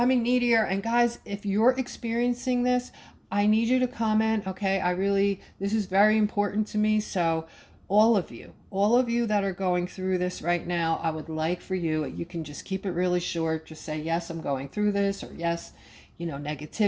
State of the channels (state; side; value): identical; both; correlation 1.00